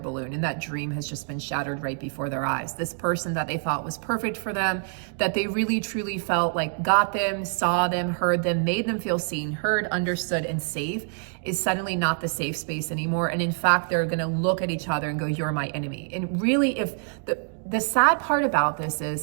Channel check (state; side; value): silent; left; 61 dB below the other